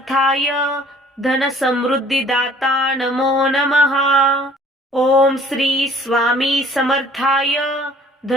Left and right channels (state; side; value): normal; both; correlation 0.54